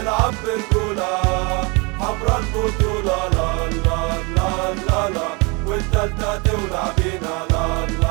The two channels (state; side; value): quieter; left; 29.1 dB